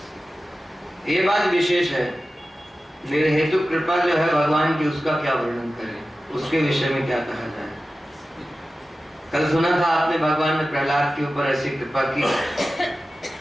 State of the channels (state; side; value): normal; both; correlation 0.95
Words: ये बात विशेष है निर्हेतु कृपा जो है भगवान की, उसका क्या वर्णन करें, उसके विषय में क्या कहा जाए। कल सुना था आपने भगवान ने प्रहलाद के ऊपर ऐसी कृपा की।